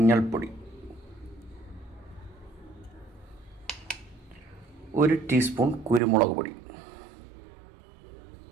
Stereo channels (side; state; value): left; drops out; at 6.0 s